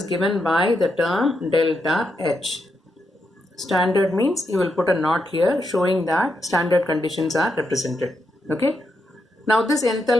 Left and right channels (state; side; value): normal; both; correlation 0.83